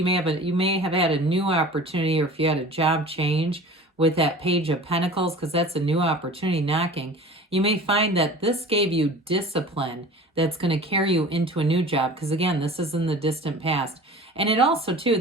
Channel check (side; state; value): both; normal; correlation 0.40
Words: may have had a new opportunity, or if you had a job change with that Page of Pentacles, because that's a new opportunity knocking, you may find that this gave you discipline that's going to carry you into a new job. Because again, this is in the distant past. And it also too,